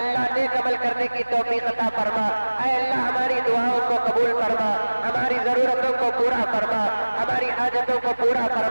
نیک عمل کرنے کی توفیق عطا فرما، اے اللہ ہماری دعاؤں کو قبول فرما، ہماری ضرورتوں کو پورا فرما، ہماری حاجتوں کو پورا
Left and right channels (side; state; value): both; inverted; correlation -1.00